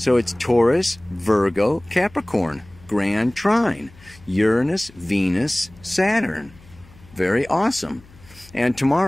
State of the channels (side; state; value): left; noise; hum, 24 dB below the sound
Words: it's Taurus, Virgo, Capricorn, grand trine. Uranus, Venus, Saturn. Very awesome. And